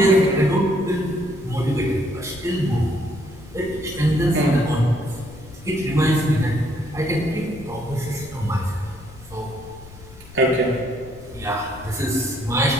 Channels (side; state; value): left; noise; rumble, 19 dB below the sound